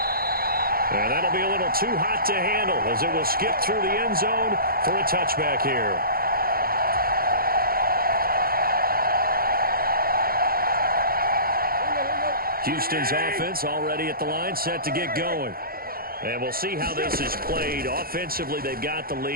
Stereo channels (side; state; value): left; late; 0.43 ms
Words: And that'll be a little too hot to handle as it will skip through the end zone for a touchback here. Houston's offense already at the line, set to get going. And we'll see how this is played. Offensively, they've got the